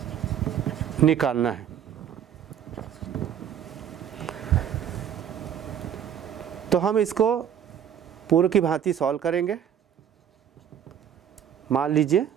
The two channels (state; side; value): quieter; left; 9.1 dB